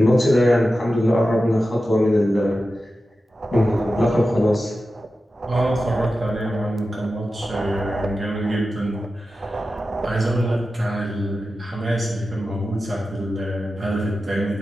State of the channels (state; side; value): normal; both; correlation 0.93